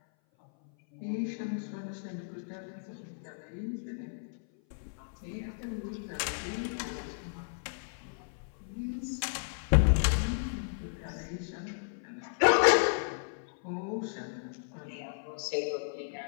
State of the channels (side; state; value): right; silent; 55 dB below the other